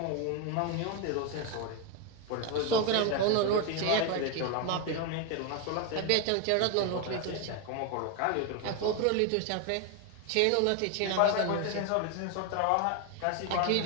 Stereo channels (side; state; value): both; different; correlation 0.02